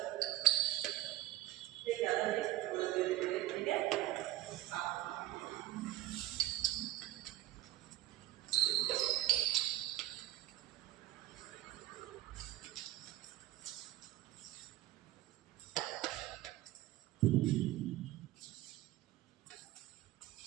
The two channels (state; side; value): quieter; left; 15.2 dB